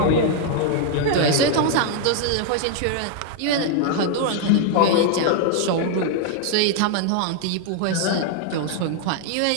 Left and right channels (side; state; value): both; different; correlation 0.00